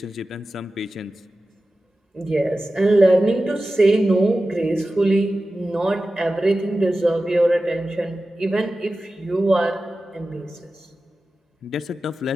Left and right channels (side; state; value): both; normal; correlation 0.94